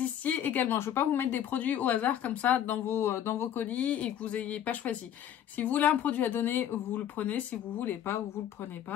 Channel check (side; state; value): right; quieter; 10.3 dB